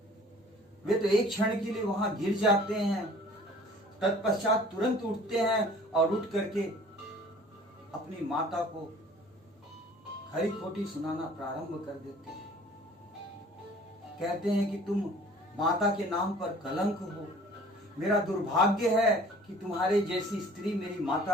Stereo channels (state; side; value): normal; both; correlation 0.50